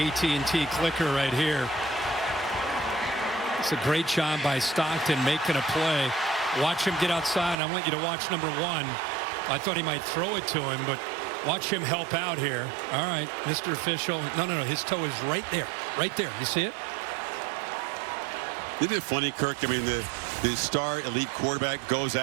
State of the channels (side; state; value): left; drops out; at 7.6 s